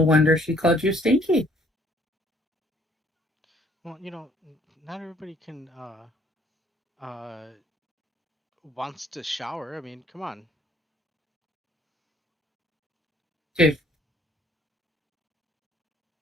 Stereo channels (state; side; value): normal; both; correlation 0.62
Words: wonder she called you stinky. Well, not everybody can wants to shower. I mean, come on. Dude,